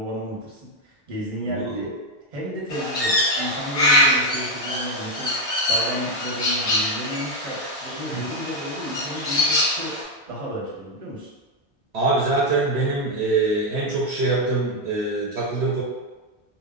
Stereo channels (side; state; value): both; normal; correlation 0.03